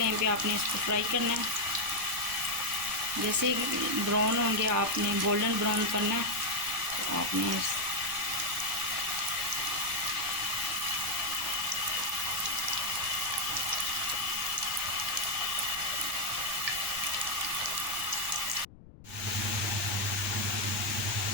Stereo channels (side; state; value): left; noise; rumble, 20 dB below the sound